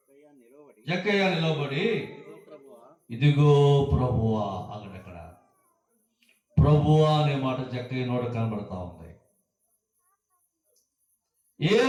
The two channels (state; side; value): identical; both; correlation 1.00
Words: జక్కయ్య నిలబడి, ఇదిగో ప్రభువా. అక్కడ ప్రభువా అనే మాట జక్కయ్య నోట కనబడతా ఉంది.